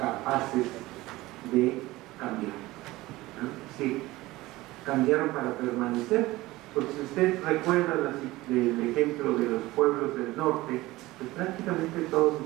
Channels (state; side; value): quieter; left; 18.9 dB